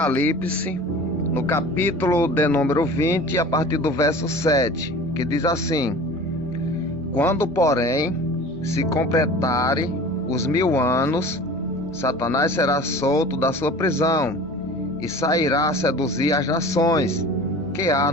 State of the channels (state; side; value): normal; both; correlation 0.40